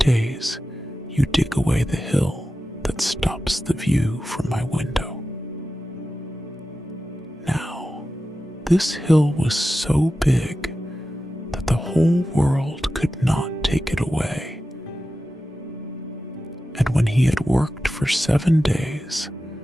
you dig away the hill that stops the view from my window." Now, this hill was so big that the whole world could not take it away. And when he had worked for 7 days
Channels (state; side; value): normal; both; correlation 0.93